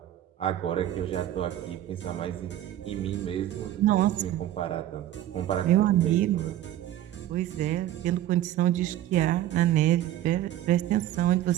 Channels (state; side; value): quieter; left; 12.9 dB